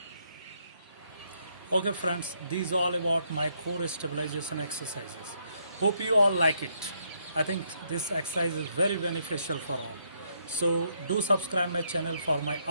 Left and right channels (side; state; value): both; inverted; correlation -0.74